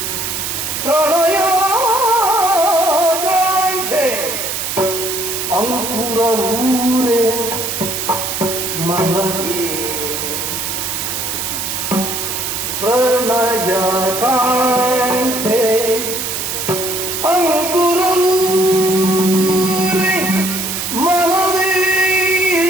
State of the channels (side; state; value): right; noise; hiss, 3 dB below the sound